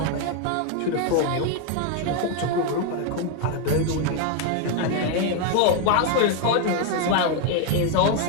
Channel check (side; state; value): both; different; correlation 0.01